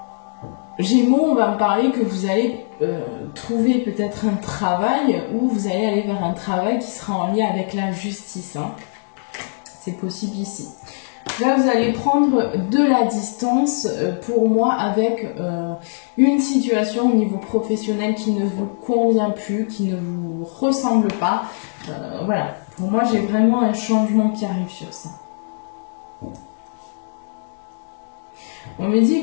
Gémeaux, on va me parler que vous allez trouver peut-être un travail ou vous allez aller vers un travail qui sera en lien avec la justice. Hein. C'est possible ici. Là, vous allez prendre de la distance pour moi avec une situation au niveau professionnel qui ne vous convient plus, qui ne vous ressemble pas. Voilà. Pour moi, j'ai vraiment un changement qui arrive sur ça. On me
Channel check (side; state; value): right; silent; digital silence